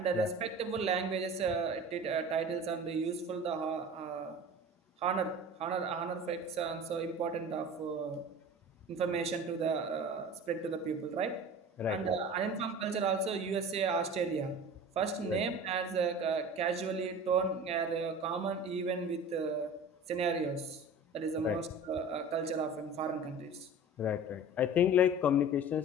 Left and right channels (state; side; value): normal; both; correlation 0.38